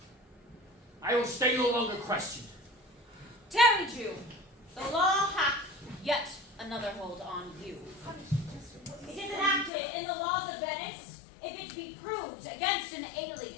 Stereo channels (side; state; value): right; drops out; at 9.7 s